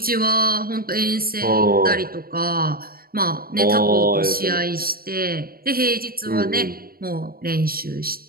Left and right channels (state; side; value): late; left; 0.43 ms